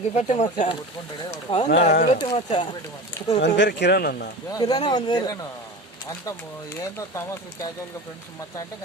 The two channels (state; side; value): normal; both; correlation 0.31